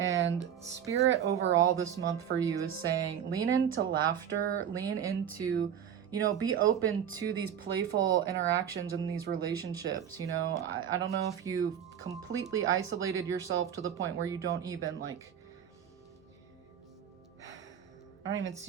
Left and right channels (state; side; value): quieter; left; 9.0 dB